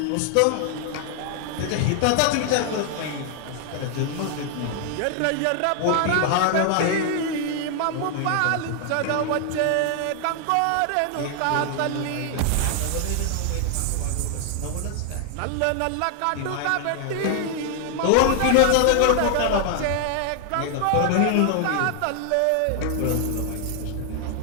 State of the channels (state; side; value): different; both; correlation 0.00